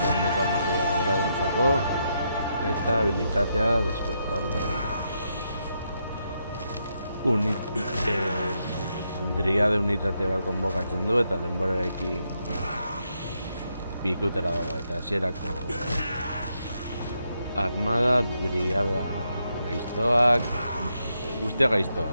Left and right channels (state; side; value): inverted; both; correlation -0.80